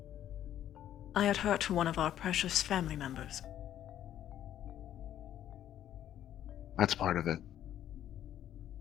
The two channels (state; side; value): quieter; right; 11.3 dB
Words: I had hurt one of our precious family members. That's part of it.